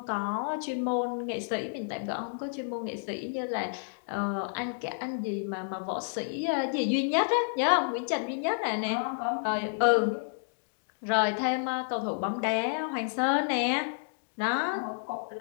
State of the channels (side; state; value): right; silent; digital silence